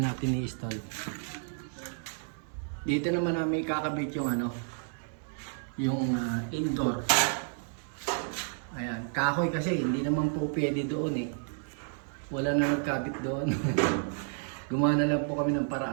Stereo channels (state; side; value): silent; left; 57 dB below the other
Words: natin i-install. Dito naman namin kakabit yung yung indoor. Ayan, kahoy kasi hindi naman po pwede doon eh. Wala na nagkabit doon. Gumawa na lang po kami ng